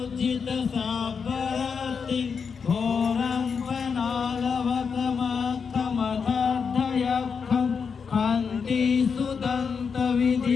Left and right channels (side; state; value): right; quieter; 5.9 dB